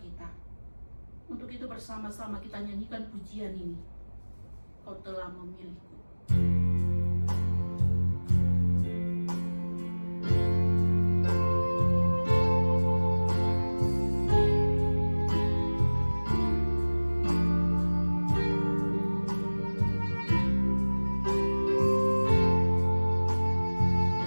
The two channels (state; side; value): inverted; both; correlation -1.00